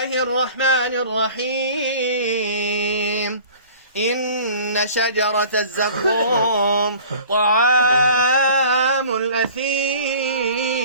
الرحمن الرحيم إن شجرة الزقوم طعام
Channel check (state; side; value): inverted; both; correlation -0.46